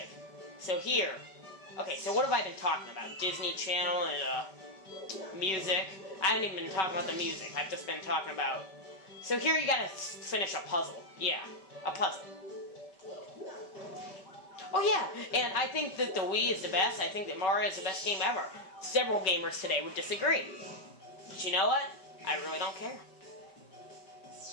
So here. Okay, so what have I been talking about? Disney Channel and music. I haven't even been talking about the music. I've just been talking about... So here you gotta finish a puzzle. Yeah, a puzzle. Oh yeah, and I think that the Wii is the best. I think that Mario is the best game ever. Several gamers today would disagree. But you know what? I really don't care.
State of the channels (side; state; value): right; late; 5.3 ms